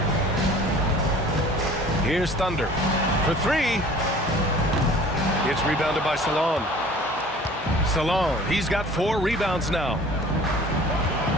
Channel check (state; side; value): normal; both; correlation 0.47